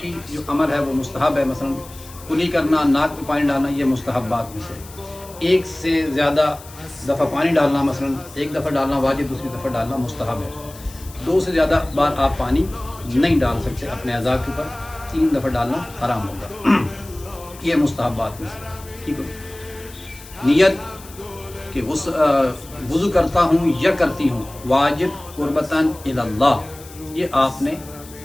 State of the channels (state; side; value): noise; left; hiss, 19 dB below the sound